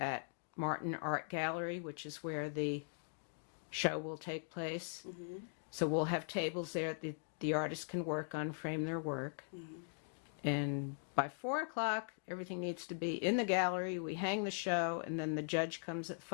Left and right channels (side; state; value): right; silent; digital silence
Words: Martin Art Gallery, which is where the show will take place. So we'll have tables there that the artists can work on, frame their work. And by 4 o'clock, everything needs to be in the gallery. We hang the show, and then the judge comes at